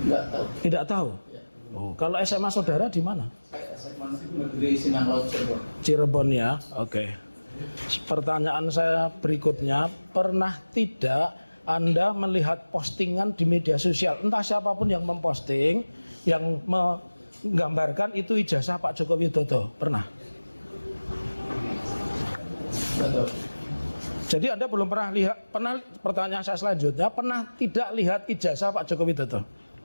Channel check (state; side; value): inverted; both; correlation -1.00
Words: Enggak tahu. Tidak tahu. Ya. Oh, kalau SMA saudara di mana? Saya SMA Negeri Sinang Laut Cirebon. Cirebon ya. Oke. Pertanyaan saya berikutnya, pernah tidak Anda melihat postingan di media sosial, entah siapapun yang memposting, yang menggambarkan itu ijazah Pak Joko Widodo? Pernah? Enggak tahu. Jadi Anda belum pernah lihat, pertanyaan saya selanjutnya, pernah tidak lihat ijazah Pak Joko Widodo?